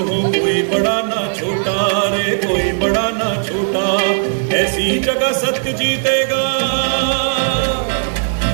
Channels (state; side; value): silent; left; digital silence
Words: कोई बड़ा ना छोटा रे, कोई बड़ा ना छोटा, ऐसी जगह सत्य जीतेगा।